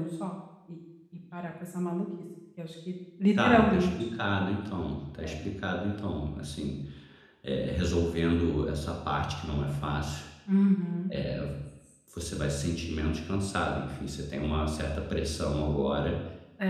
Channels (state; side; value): identical; both; correlation 1.00